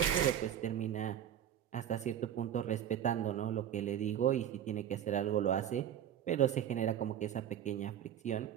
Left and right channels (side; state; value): left; quieter; 10.2 dB